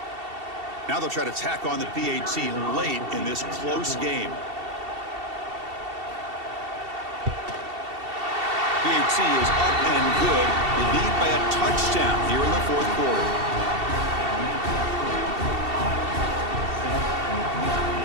Now they'll try to tack on the PAT late in this close game. PAT is up and good. They lead by a touchdown here in the fourth quarter.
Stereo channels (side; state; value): left; late; 2.7 ms